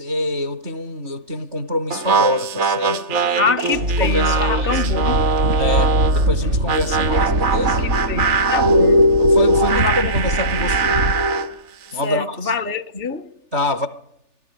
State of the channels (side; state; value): left; late; 3.4 ms